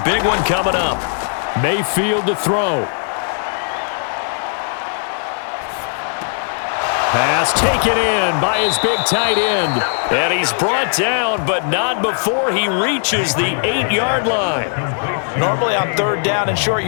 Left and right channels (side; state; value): right; silent; digital silence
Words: big one coming up. Mayfield to throw. Pass taken in by his big tight end. And he's brought down, but not before he reaches the 8-yard line. Normally on 3rd down and short